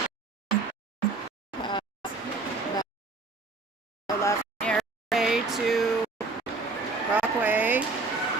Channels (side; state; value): left; quieter; 3.7 dB